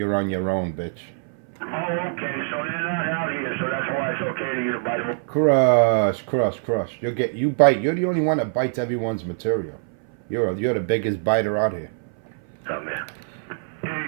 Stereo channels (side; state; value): left; silent; 60 dB below the other